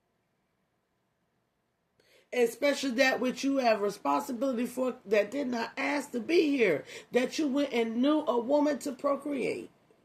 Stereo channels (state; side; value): identical; both; correlation 1.00